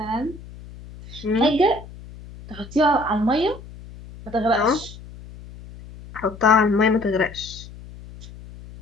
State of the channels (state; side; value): noise; left; hum, 17 dB below the sound